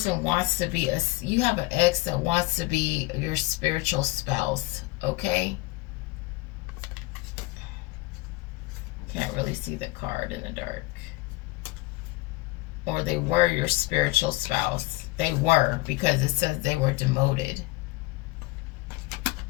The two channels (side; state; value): right; quieter; 22.0 dB